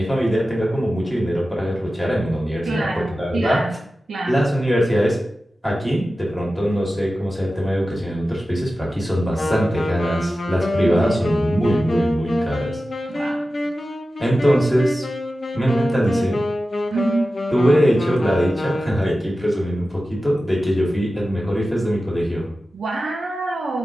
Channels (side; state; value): both; normal; correlation 0.94